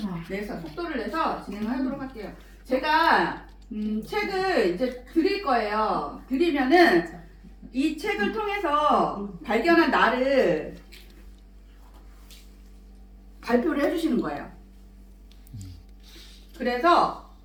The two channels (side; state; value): both; identical; correlation 1.00